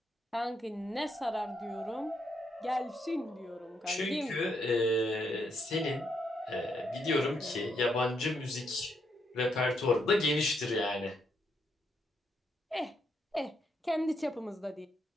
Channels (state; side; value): normal; both; correlation 0.77